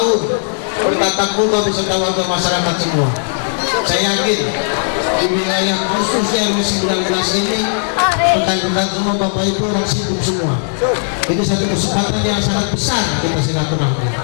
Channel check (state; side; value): silent; right; digital silence